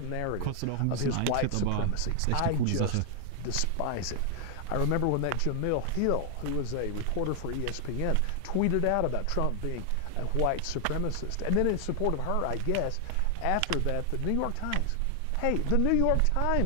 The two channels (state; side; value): different; both; correlation 0.00